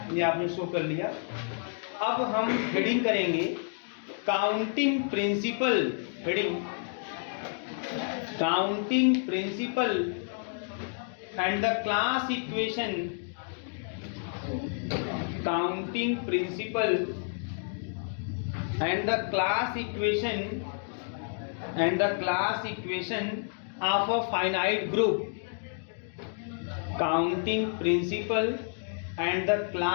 ये आपने शो कर लिया। अब हम हेडिंग करेंगे counting principle. Heading counting principle and the class equation. Counting principle and the class equation of a finite group. Counting principle and the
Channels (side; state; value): right; silent; 58 dB below the other